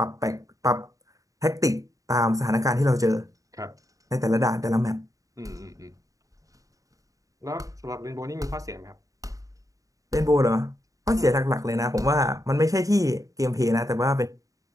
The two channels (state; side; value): late; left; 0.16 ms